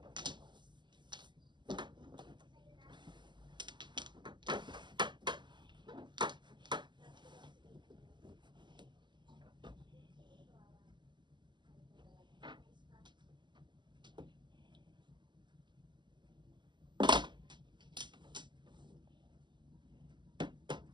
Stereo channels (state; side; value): late; left; 0.22 ms